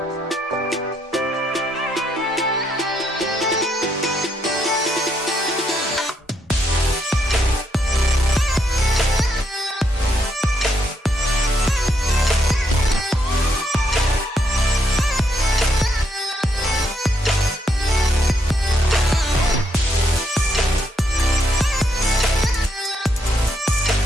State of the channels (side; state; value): both; normal; correlation 0.76